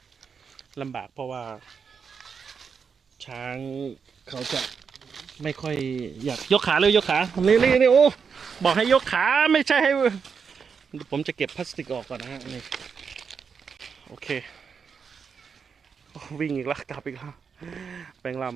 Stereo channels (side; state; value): left; quieter; 6.1 dB